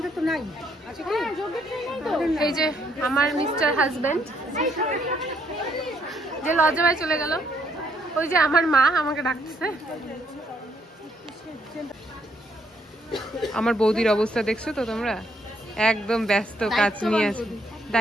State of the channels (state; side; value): normal; both; correlation 0.71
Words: তো নাই। এই যে আমার মিস্টার হাজবেন্ড যে লজ্জায় চলে গেল, ওই যে আমার মা আমাকে ডাকতেছে। আমার বৌদির অবস্থা দেখছো তো তোমরা, একদম ব্যস্ত, কাজ নিয়ে আছে,